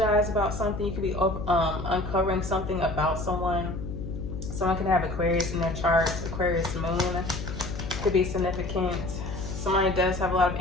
about something. You could be uncovering something about someone. Someone can have Aquarius in their chart. Aquarius moon could be significant. Somebody does have a lot of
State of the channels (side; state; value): left; noise; hum, 7 dB below the sound